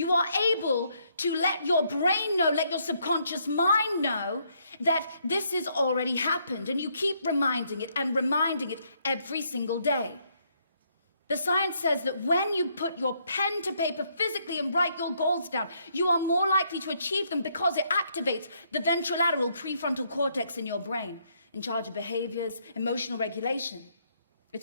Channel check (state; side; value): inverted; both; correlation -0.72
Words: are able to let your brain know, let your subconscious mind know that this has already happened. And you keep reminding it and reminding it every single day. The science says that when you put your pen to paper physically and write your goals down, you are more likely to achieve them because it activates the ventrolateral prefrontal cortex in your brain, in charge of behaviors, emotional regulation.